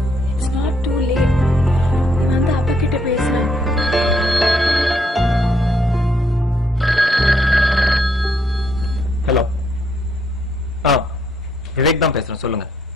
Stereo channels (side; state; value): both; normal; correlation 0.72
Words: It's not too late. நான் தான் அப்பா கிட்ட பேசுறேன். ஹலோ. விவேக் தான் பேசுறேன், சொல்லுங்க.